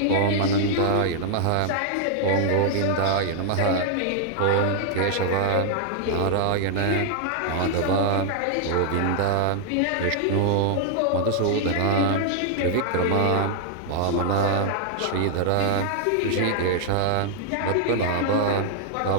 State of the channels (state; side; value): different; both; correlation 0.00